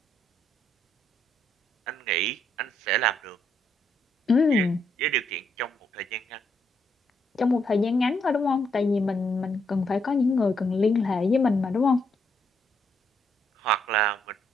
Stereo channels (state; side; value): normal; both; correlation 0.75